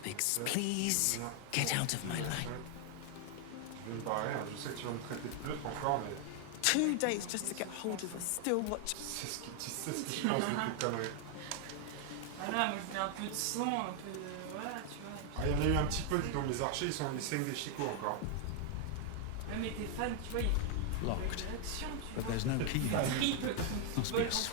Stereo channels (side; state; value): both; different; correlation 0.00